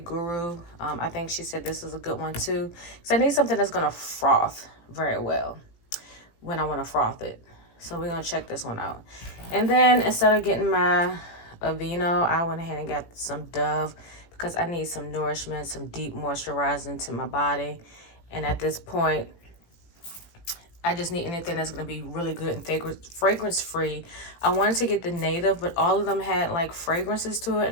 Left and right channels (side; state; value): right; late; 18 ms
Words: I think she said this is a good one too. So I need something that's going to froth very well when I want to froth it. So we're going to check this one out. And then instead of getting my Aveeno, I went ahead and got some Dove because I need some nourishment, some deep moisturizing to my body. And at this point, I just need anything that's going to be really good and fragrance free. I wanted to get the native, but all of them had like fragrances to it.